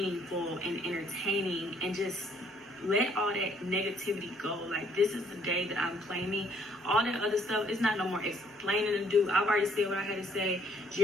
and entertaining, and just let all that negativity go. Like, this is the day that I'm claiming. All that other stuff, it's not no more explaining to do. I've already said what I had to say.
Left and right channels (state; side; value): normal; both; correlation 0.65